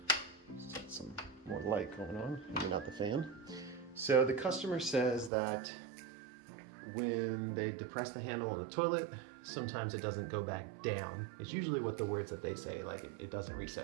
Some more light going on, maybe not the fan. So the customer says that when they depress the handle on the toilet, sometimes it doesn't go back down. It's usually what the words that they say, like it doesn't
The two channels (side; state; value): left; drops out; at 5.3 s